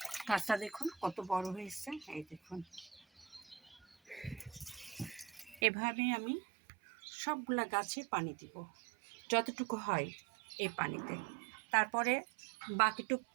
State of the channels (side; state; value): left; drops out; at 5.6 s